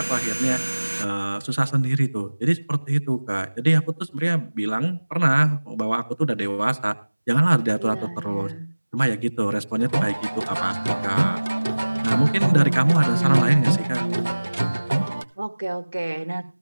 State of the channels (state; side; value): inverted; both; correlation -1.00